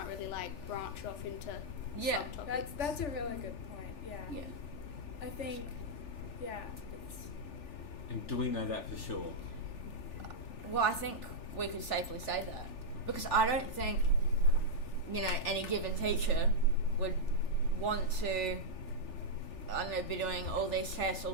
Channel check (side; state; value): right; late; 3.4 ms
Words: really like branch off into Yeah. subtopics. That's a really good point. Yeah. Yeah. I think. Yeah. It's, And do we know that for sure? Well, I think we could safely say that, because I don't think, any given teacher would want to, I don't know, be doing all these tests, all